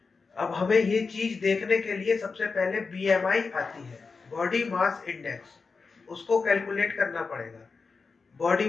अब हमें ये चीज देखने के लिए सबसे पहले बीएमआई आती है, बॉडी मास इंडेक्स, उसको कैलकुलेट करना पड़ेगा। बॉडी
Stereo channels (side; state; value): right; quieter; 4.6 dB